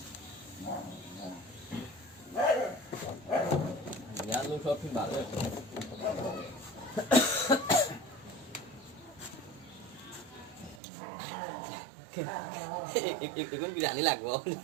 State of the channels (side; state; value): left; drops out; at 10.8 s